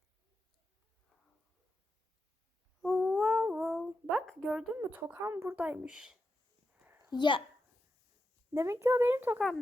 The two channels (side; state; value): both; normal; correlation 0.88